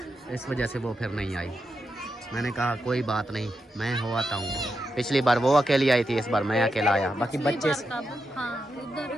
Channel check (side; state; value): both; normal; correlation 0.86